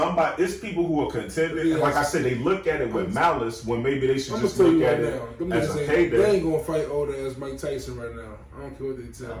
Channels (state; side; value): identical; both; correlation 1.00